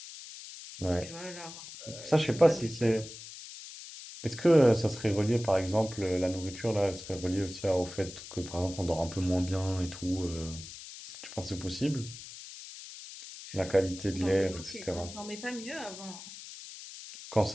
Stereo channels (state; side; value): noise; left; hiss, 13 dB below the sound